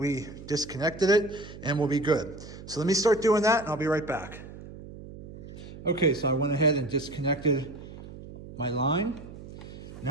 disconnected it, and we'll be good. So let me start doing that, and I'll be right back. Okay, so I went ahead and disconnected my line.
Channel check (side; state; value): right; noise; hum, 14 dB below the sound